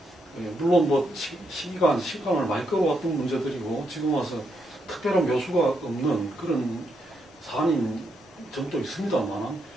물론 뭐 시간을 많이 끌어왔던 문제들이고 지금 와서 특별한 묘수가 없는 그런 사안인 점도 있습니다만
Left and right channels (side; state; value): both; normal; correlation 0.79